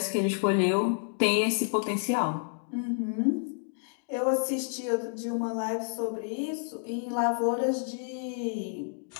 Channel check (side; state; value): right; silent; digital silence